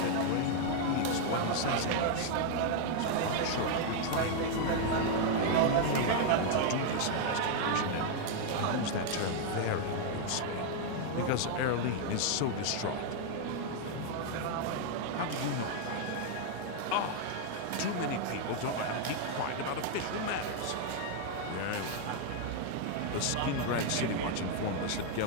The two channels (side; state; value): both; different; correlation 0.00